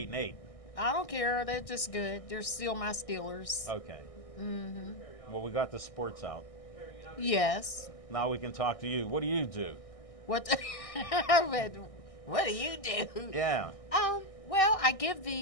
I don't care. They're just good. They're still my Steelers. Okay. Well, we got the sports out. Yes. Now we can talk to you. What do you do? What? What do you do? Yeah. Well, I give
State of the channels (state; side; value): late; right; 1.6 ms